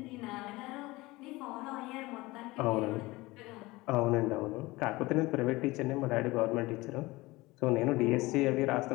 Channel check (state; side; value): quieter; right; 20.8 dB